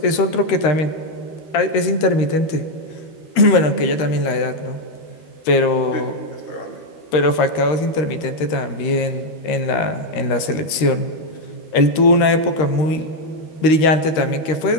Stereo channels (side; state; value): right; late; 13 ms